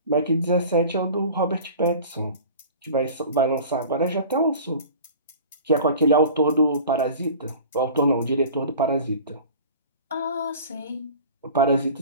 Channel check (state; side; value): inverted; both; correlation -0.41